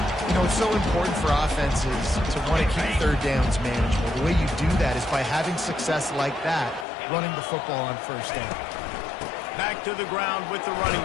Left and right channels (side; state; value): right; drops out; at 6.9 s